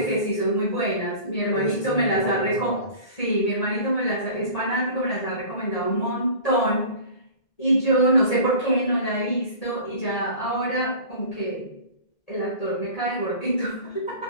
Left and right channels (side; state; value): right; late; 1.8 ms